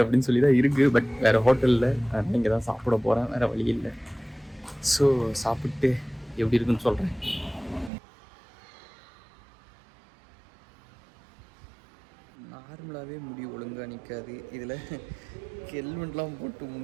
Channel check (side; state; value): left; drops out; at 7.9 s